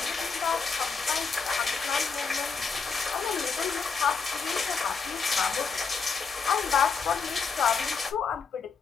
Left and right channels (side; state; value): right; quieter; 5.2 dB